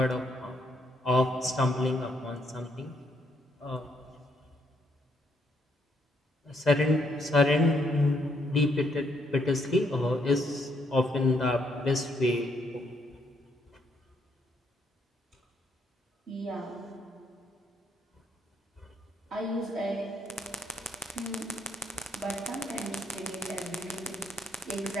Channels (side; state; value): both; normal; correlation 0.73